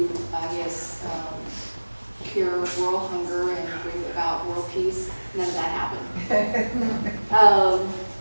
cure world hunger and bring about world peace. None of that happened.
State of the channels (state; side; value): inverted; both; correlation -1.00